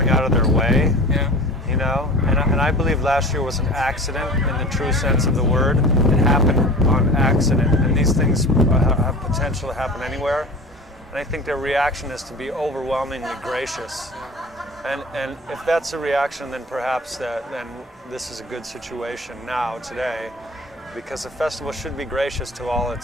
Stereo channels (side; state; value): both; normal; correlation 0.38